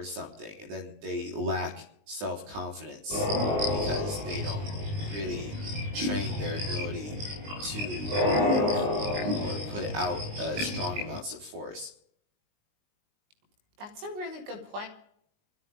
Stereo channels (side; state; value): left; late; 19 ms